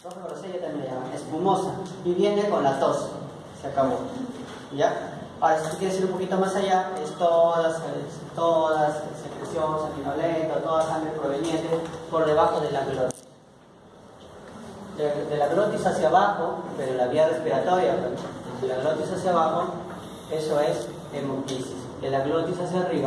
Roja grosella también le llaman, espumosa. Y viene con la tos. Se acabó. ¿Ya? Ahora, si tú quieres ir un poquito más allá, es todas secreción sanguinolenta, toda sangre proveniente por debajo de la glotis. De la glotis hacia abajo, pero la vía respiratoria, de la glotis hacia abajo, eso es hemoptisis. De la glotis hacia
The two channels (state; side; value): identical; both; correlation 1.00